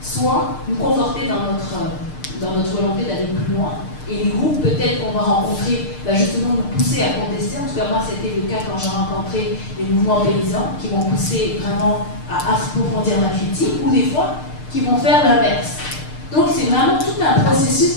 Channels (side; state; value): right; late; 6.6 ms